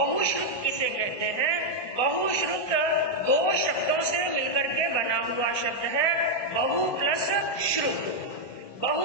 किसे कहते हैं। बहुश्रुत 2 शब्दों से मिलकर के बना हुआ शब्द है, बहु प्लस श्रुत।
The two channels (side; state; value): right; late; 1.2 ms